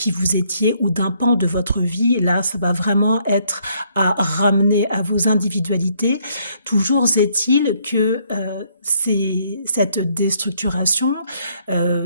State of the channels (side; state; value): both; inverted; correlation -0.68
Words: vous étiez ou d'un pan de votre vie. Là, ça va vraiment être à ramener à vos individualités. Toujours est-il que c'est cette déstructuration